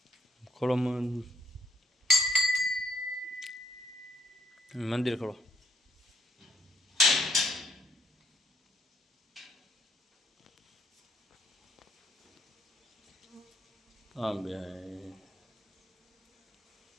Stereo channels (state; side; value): normal; both; correlation 0.71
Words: ખોલો મંદિર ખોલો. હા બે